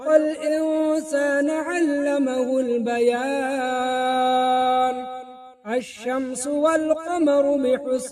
الإنسان علمه البيان. الشمس والقمر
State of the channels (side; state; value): both; identical; correlation 1.00